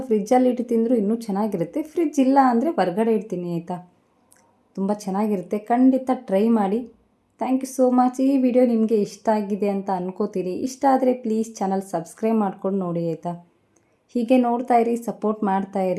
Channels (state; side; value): identical; both; correlation 1.00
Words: ಫ್ರಿಜ್ಜಲ್ಲಿ ಇಟ್ಟು ತಿಂದರೂ ಇನ್ನೂ ಚೆನ್ನಾಗಿರುತ್ತೆ. ಫ್ರಿಜ್ ಇಲ್ಲ ಅಂದರೆ ಹೊರಗಡೆ ಇಡ್ತೀನಿ ಆಯಿತಾ, ತುಂಬ ಚೆನ್ನಾಗಿರುತ್ತೆ. ಖಂಡಿತ ಟ್ರೈ ಮಾಡಿ. Thank you so much. ಈ ವಿಡಿಯೋ ನಿಮಗೆ ಇಷ್ಟ ಆಗಿದೆ ಅಂತ ಅನ್ಕೋತೀನಿ. ಇಷ್ಟ ಆದರೆ ಪ್ಲೀಸ್ ಚಾನಲ್ ಸಬ್ಸ್ಕ್ರೈಬ್ ಮಾಡ್ಕೊಂಡು ನೋಡಿ ಆಯಿತಾ. ಹೀಗೆ ನೋಡ್ತಾ ಇರಿ, ಸಪೋರ್ಟ್ ಮಾಡ್ತಾ